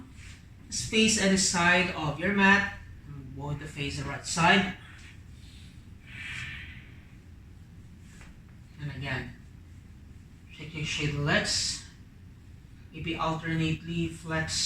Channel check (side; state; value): both; identical; correlation 1.00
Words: Just face at the side of your mat. I'm going to face the right side. And again, shake the legs. Maybe alternately